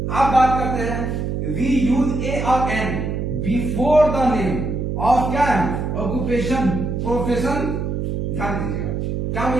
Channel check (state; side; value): noise; right; hum, 2 dB below the sound